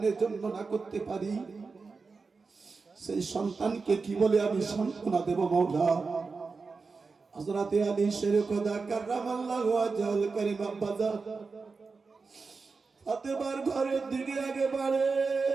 জন্য না করতে পারি, সেই সন্তানকে কি বলে আমি সান্ত্বনা দেব মাওলা। হযরতে আলী শেরে খোদা কাররামাল্লাহু ওয়াজহাল কারীম আব্বাজান ফাতেমার ঘরের দিকে আগে বাড়ে।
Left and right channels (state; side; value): quieter; left; 4.5 dB